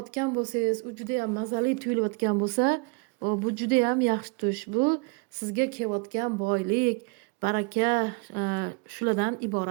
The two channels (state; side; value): quieter; left; 30.7 dB